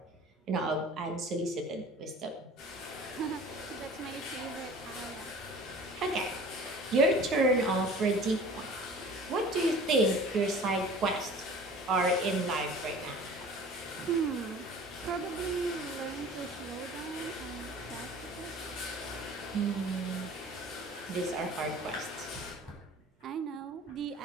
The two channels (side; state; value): both; normal; correlation 0.44